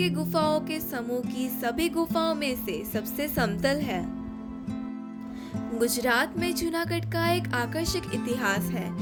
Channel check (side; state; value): both; identical; correlation 1.00